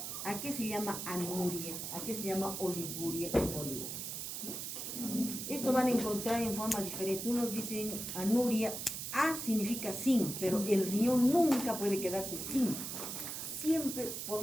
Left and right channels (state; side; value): noise; right; hiss, 5 dB below the sound